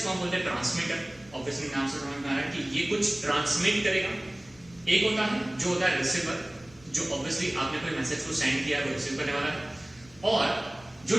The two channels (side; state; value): left; noise; rumble, 25 dB below the sound